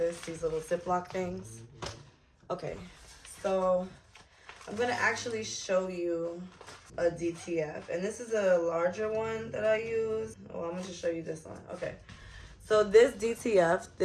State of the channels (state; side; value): identical; both; correlation 1.00